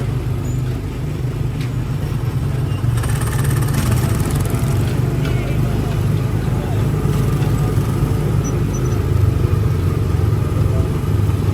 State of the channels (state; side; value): identical; both; correlation 1.00